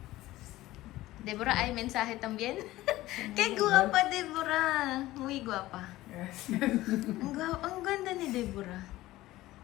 Deborah, hay mensaje también? Qué guapa, Deborah. Muy guapa. Gracias. Ang ganda ni Deborah.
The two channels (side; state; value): right; quieter; 16.8 dB